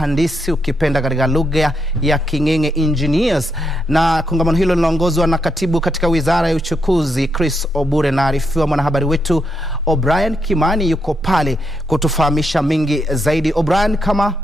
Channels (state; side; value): normal; both; correlation 0.80